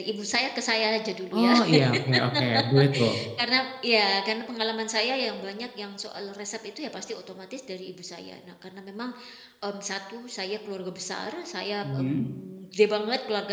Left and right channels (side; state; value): both; identical; correlation 1.00